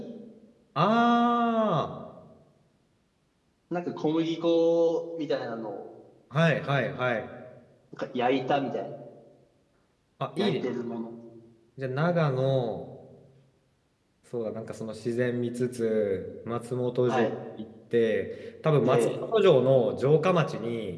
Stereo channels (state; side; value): identical; both; correlation 1.00